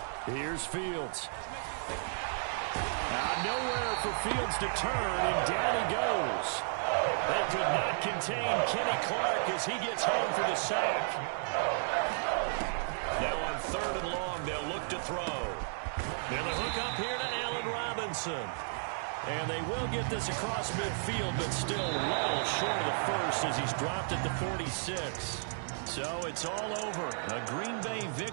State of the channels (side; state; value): left; silent; digital silence